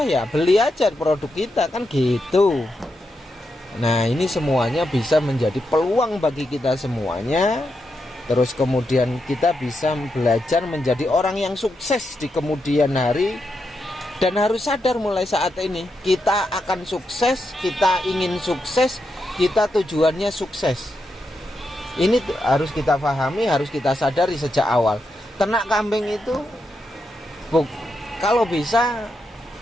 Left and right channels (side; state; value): both; normal; correlation 0.84